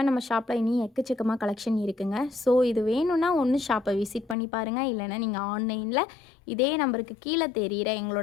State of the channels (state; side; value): drops out; right; at 4.4 s